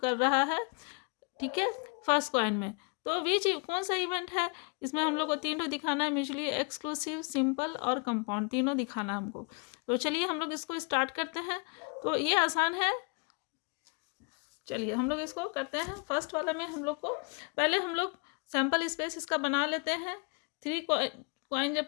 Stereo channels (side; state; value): right; quieter; 34.9 dB